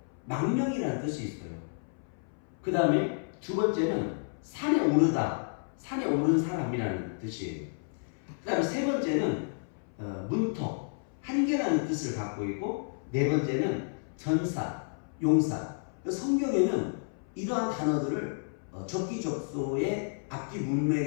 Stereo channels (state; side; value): silent; right; 57 dB below the other